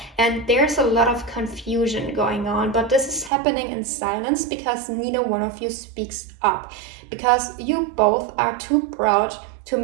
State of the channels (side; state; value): left; drops out; at 3.3 s